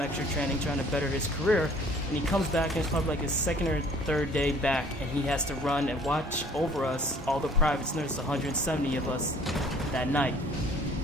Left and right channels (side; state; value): both; normal; correlation 0.54